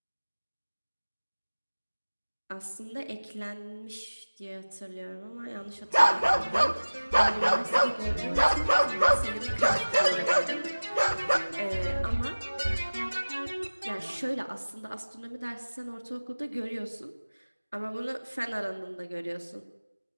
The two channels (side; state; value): both; inverted; correlation -1.00